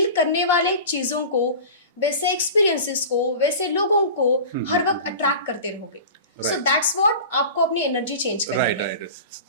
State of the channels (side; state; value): both; inverted; correlation -0.35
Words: करने वाले चीजों को, वैसे एक्सपीरियंसेस को, वैसे लोगों को हर वक्त अट्रैक्ट करते रहोगे। सो दैट्स व्हाट आपको अपनी एनर्जी चेंज करनी है।